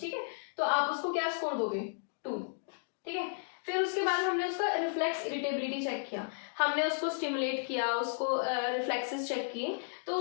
ठीक है, तो आप उसको क्या स्कोर दोगे? 2। ठीक है, फिर उसके बाद हमने उसका रिफ्लेक्स इरिटेबिलिटी चेक किया, हमने उसको स्टिमुलेट किया, उसको रिफ्लेक्सेस चेक किए, तो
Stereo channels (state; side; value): silent; right; digital silence